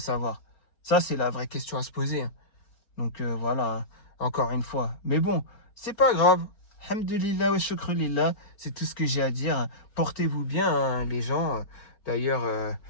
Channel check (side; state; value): right; late; 4.3 ms